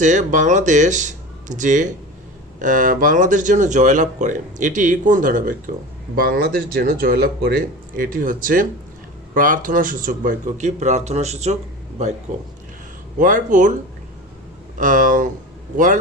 বাংলাদেশ যেন জয়লাভ করে, এটি কোন ধরনের বাক্য? বাংলাদেশ যেন জয়লাভ করে, এটি হচ্ছে প্রার্থনা সূচক বাক্য। কি? প্রার্থনা সূচক বাক্য।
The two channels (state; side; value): normal; both; correlation 0.31